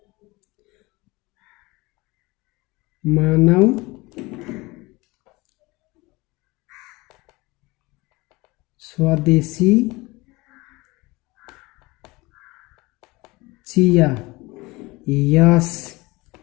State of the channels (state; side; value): quieter; right; 22.7 dB